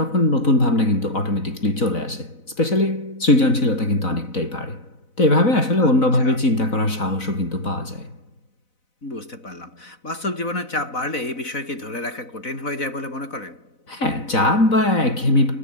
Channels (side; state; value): right; late; 4.0 ms